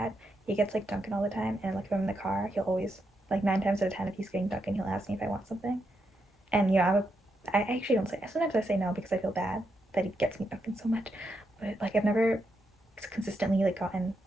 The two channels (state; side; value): normal; both; correlation 0.82